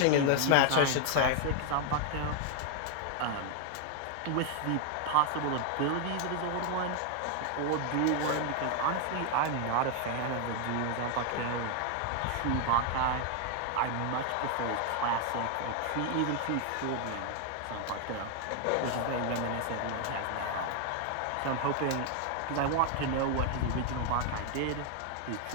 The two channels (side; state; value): both; different; correlation 0.00